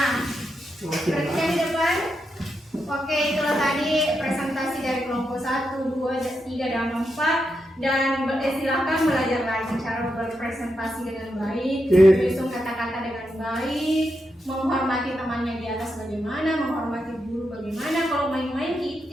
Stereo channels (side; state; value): both; normal; correlation 0.85